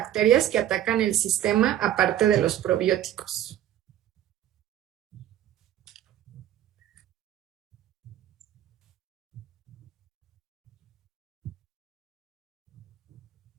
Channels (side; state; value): left; quieter; 11.9 dB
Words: que atacan el sistema aparte de los probióticos.